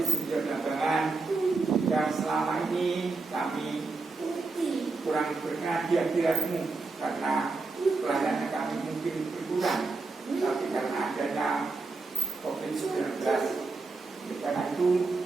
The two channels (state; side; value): quieter; left; 3.8 dB